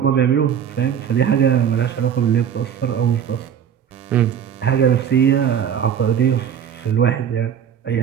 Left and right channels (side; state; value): left; quieter; 8.5 dB